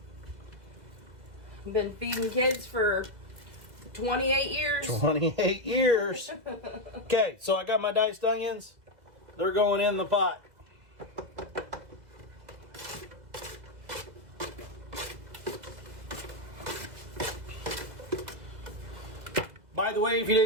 Been feeding kids for 28 years. 28 years. Okay, so I got my diced onions. They're going in the pot. By the way, if you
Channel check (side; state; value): left; late; 2.0 ms